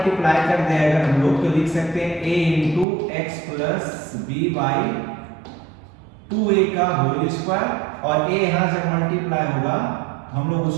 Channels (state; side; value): drops out; left; at 2.9 s